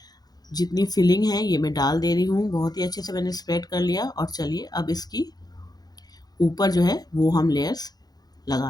जितनी फिलिंग है ये मैं डाल दे रही हूँ, बहुत ही अच्छे से मैंने स्प्रेड कर लिया। और चलिए अब इसकी ऊपर जो है वो हम लेयर्स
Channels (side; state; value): right; late; 0.19 ms